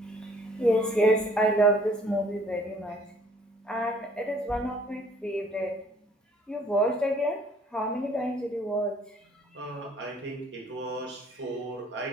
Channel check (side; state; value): both; normal; correlation 0.59